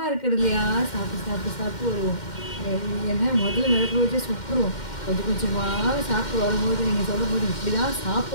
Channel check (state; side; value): late; right; 2.1 ms